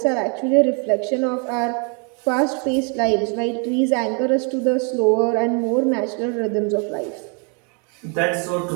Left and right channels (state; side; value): quieter; left; 37.0 dB